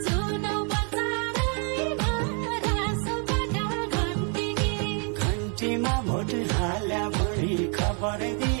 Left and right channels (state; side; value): quieter; left; 39.0 dB